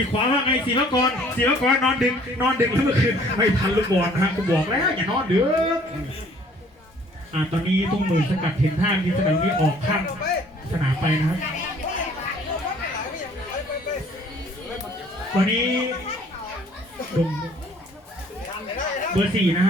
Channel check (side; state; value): both; normal; correlation 0.57